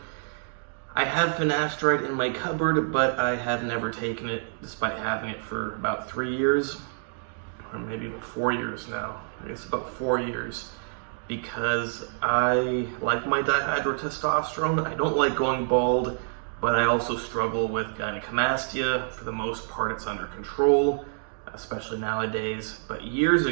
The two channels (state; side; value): silent; left; digital silence